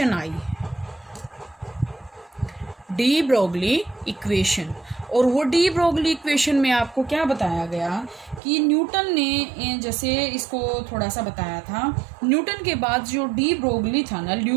आई, डी ब्रोगली इक्वेशन। और वो डी ब्रोगली इक्वेशन में आपको क्या बताया गया कि न्यूटन ने जैसे इसको थोड़ा सा बताया था, न्यूटन के बाद जो डी ब्रोगली था ना,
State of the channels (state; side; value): drops out; left; at 8.4 s